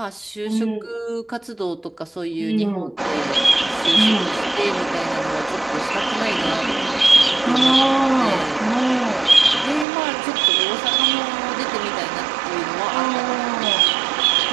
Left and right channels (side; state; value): left; drops out; at 9.9 s